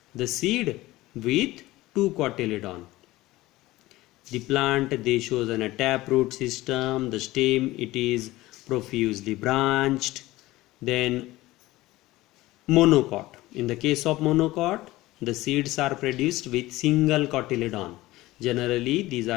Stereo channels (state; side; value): quieter; right; 18.1 dB